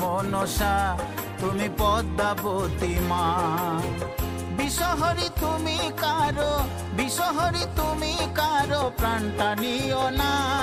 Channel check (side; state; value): both; identical; correlation 1.00